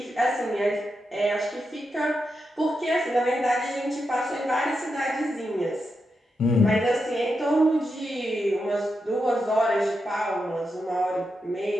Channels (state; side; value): normal; both; correlation 0.86